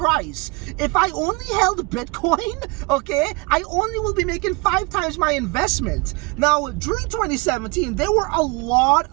If I only held Bitcoin, okay, I only will be making 5 times my investment. Now, during 2017, there were a lot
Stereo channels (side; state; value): left; quieter; 26.7 dB